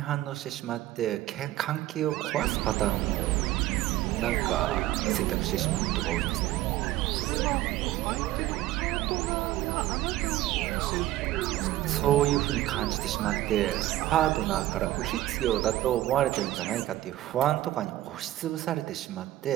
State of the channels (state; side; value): quieter; left; 15.1 dB